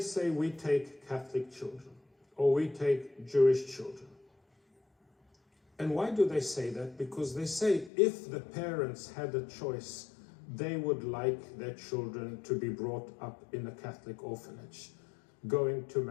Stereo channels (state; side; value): drops out; right; at 7.9 s